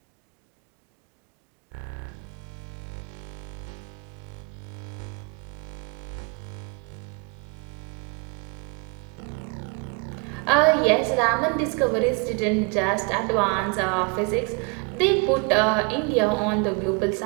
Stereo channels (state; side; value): quieter; left; 32.9 dB